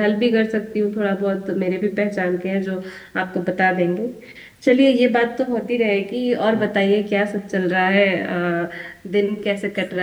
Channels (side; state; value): both; identical; correlation 1.00